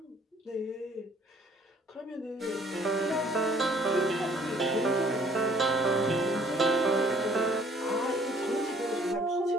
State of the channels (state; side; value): normal; both; correlation 0.58